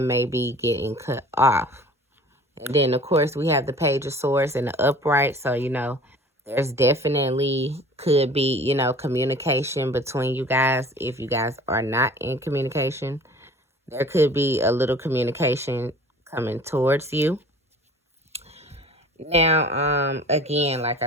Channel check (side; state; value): both; normal; correlation 0.46